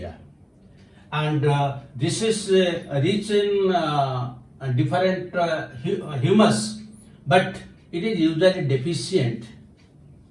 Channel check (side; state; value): both; identical; correlation 1.00